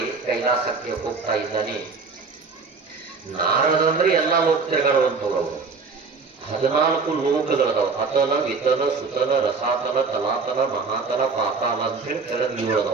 ಕೈಲಾಸಕ್ಕೆ ಹೋಗ್ತಾ ಇದ್ದಾನೆ. ನಾರದ ಅಂದ್ರೆ ಎಲ್ಲಾ ಲೋಕ ತಿರುಗಾಡುವಂಥವ್ರು. 14 ಲೋಕಗಳದಾವ. ಅತಲ, ವಿತಲ, ಸುತಲ, ರಸಾತಲ, ತಲಾತಲ, ಮಹಾತಲ, ಪಾತಾಲ ಅಂತ ಹೇಳಿ ಕೆಳಗೆ 7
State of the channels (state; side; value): quieter; left; 4.6 dB